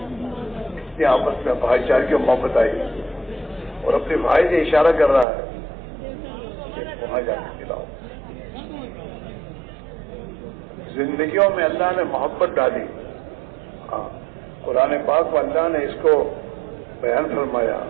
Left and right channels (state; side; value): drops out; left; at 5.2 s